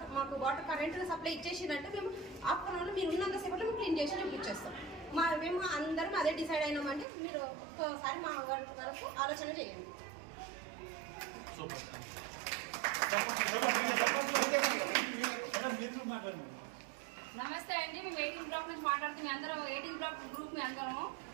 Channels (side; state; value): left; drops out; at 7.1 s